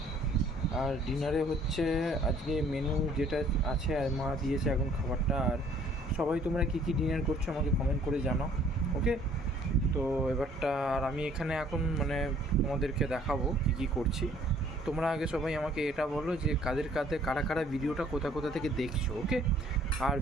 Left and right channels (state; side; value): normal; both; correlation 0.58